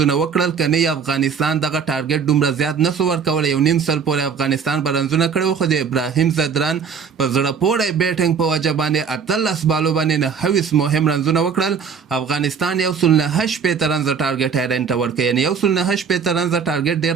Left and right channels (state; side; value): quieter; left; 6.4 dB